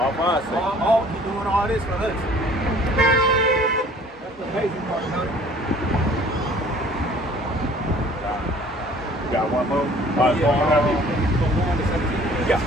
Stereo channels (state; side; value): normal; both; correlation 0.52